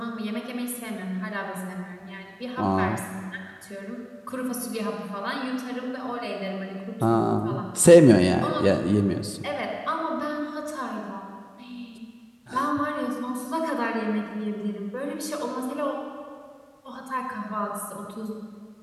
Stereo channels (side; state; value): both; identical; correlation 1.00